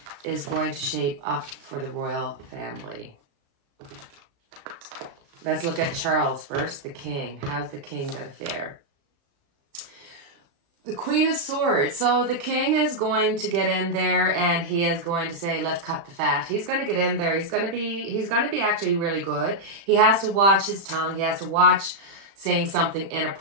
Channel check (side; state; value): left; late; 36 ms